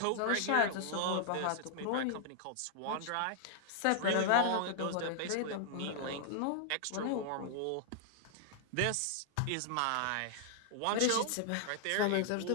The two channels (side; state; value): both; different; correlation -0.01